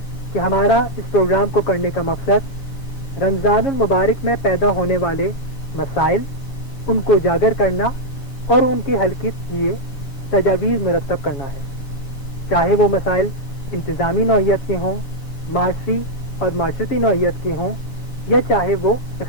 کہ ہمارا اس پروگرام کو کرنے کا مقصد رمضان المبارک میں پیدا ہونے والے مسائل، ان کو اجاگر کرنا اور ان کے حل کے لیے تجاویز مرتب کرنا ہے، چاہے وہ مسائل انتظامی نوعیت کے ہوں، معاشی اور معاشرتی نوعیت کے ہوں، یا چاہے وہ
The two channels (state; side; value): late; right; 6.8 ms